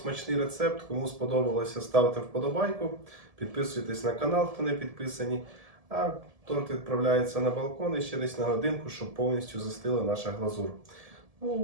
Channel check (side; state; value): left; late; 1.7 ms